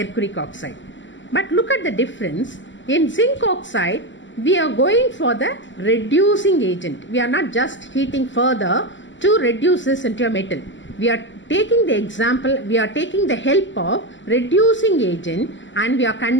oxide. But look at the difference. In zinc oxide, we are going for the reducing agent. We are not just heating further to reduce this into a metal. We are taking the example, we are taking the help of reducing agent and we are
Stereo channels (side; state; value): right; late; 0.54 ms